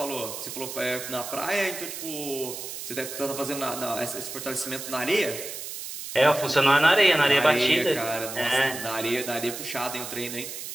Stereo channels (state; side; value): noise; right; hiss, 8 dB below the sound